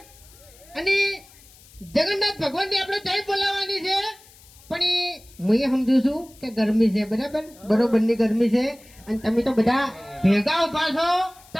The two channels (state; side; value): noise; left; hiss, 25 dB below the sound